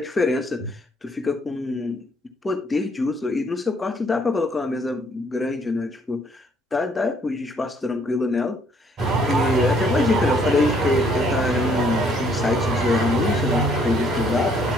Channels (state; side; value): normal; both; correlation 0.65